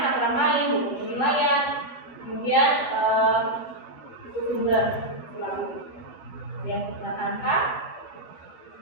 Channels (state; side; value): late; right; 13 ms